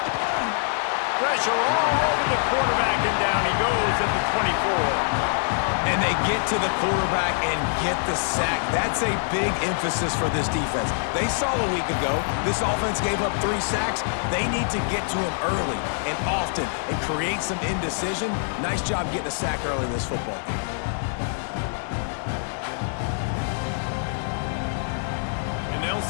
Pressure all over the quarterback, and down he goes at the 24. And they get to the quarterback and get the sack. That's a big emphasis for this defense. They saw a week ago, this offense gave up 3 sacks. They need to get to him early and often and create some indecision. Nice job getting a sack early in this football game. And they'll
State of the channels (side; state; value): right; silent; digital silence